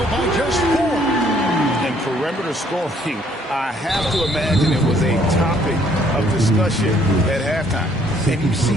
by just 4. And perimeter scoring, I have to imagine it was a topic of discussion at halftime. And you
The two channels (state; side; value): normal; both; correlation 0.64